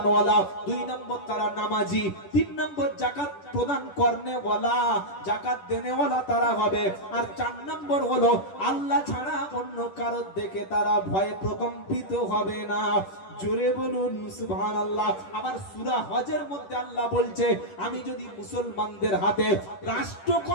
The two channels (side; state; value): right; late; 10 ms